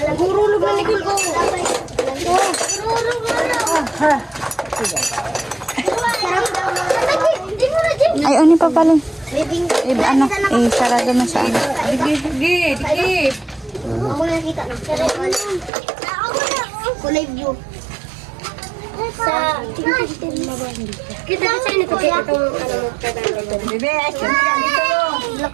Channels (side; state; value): left; drops out; at 15.7 s